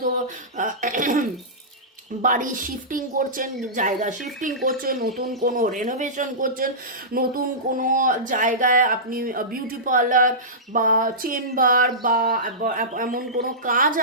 বাড়ি শিফটিং করছেন, জায়গা শিফটিং করছেন, নতুন কোনো রেনোভেশন করছেন, নতুন কোনো জায়গায় আপনি বিউটি পার্লার বা চেম্বার বা এমন কোনো কাজ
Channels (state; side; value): normal; both; correlation -0.18